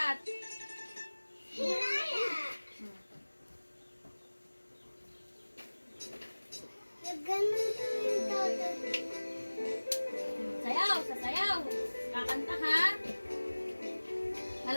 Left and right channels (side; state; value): both; inverted; correlation -1.00